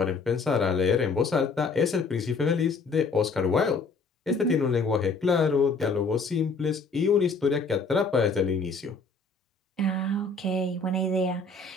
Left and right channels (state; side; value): quieter; right; 4.1 dB